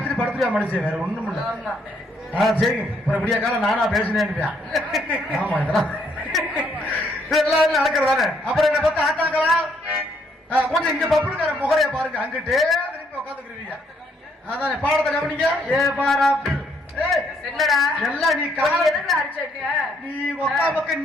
படுத்துருவா மனுஷன், வேற ஒண்ணும் இல்ல. சரிங்க, அப்புறம் விடிய காலம் நானா பேசினேன். ஆமா இதெல்லாம் எல்லாரும் நடக்கிறதானே. அப்புறம் என்ன பார்த்து ஆத்தாங்களா கொஞ்சம் இங்க பப்புனுக்கார முகரைய பாருங்க, அங்கிட்டே திரும்பி உட்காந்துக்கிறீங்க. அதானே பாடத்தை கவனிங்க. ஏ பாரா என்னடா எல்லாம் நீ நீ ஒக்கா பக்கம்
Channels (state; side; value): normal; both; correlation 0.70